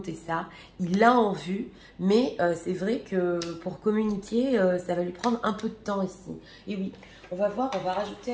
ça. Il l'a en vue, mais c'est vrai que pour communiquer, ça va lui prendre un peu de temps ici. Et oui, on va voir, on va rajouter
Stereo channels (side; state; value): both; identical; correlation 1.00